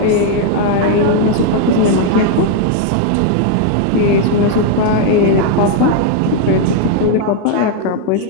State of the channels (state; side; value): different; both; correlation 0.00